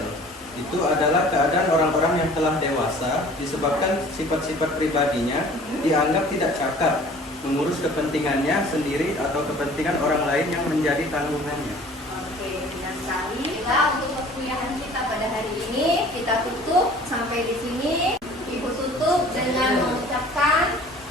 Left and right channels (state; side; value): normal; both; correlation 0.48